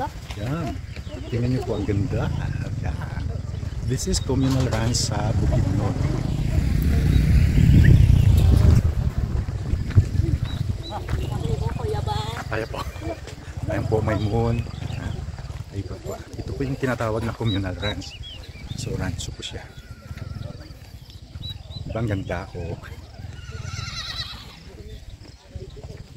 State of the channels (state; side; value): identical; both; correlation 1.00